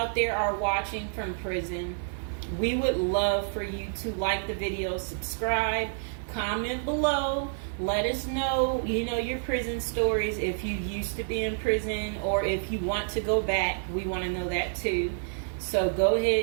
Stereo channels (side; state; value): left; silent; digital silence